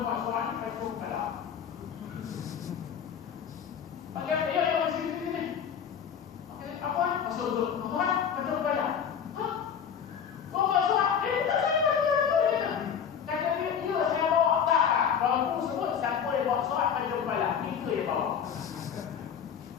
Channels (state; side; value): quieter; right; 7.8 dB